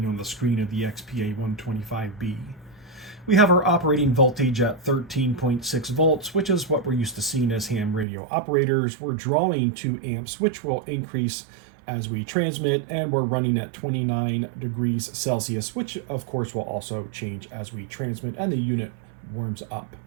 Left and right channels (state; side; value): drops out; left; at 8.1 s